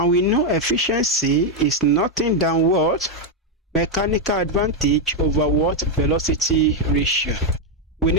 we know efficiency is nothing than what? Mechanical advantage over what? Velocity ratio. We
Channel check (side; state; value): both; normal; correlation 0.01